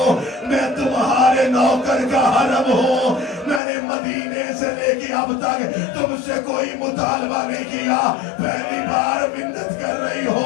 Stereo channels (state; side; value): drops out; right; at 3.6 s